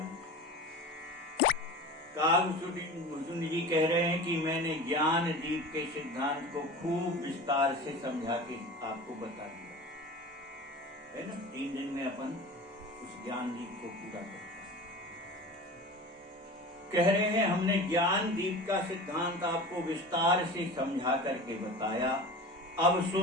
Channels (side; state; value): both; normal; correlation 0.34